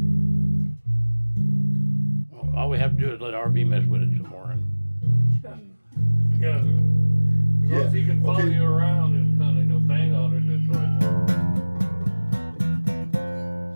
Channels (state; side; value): inverted; both; correlation -1.00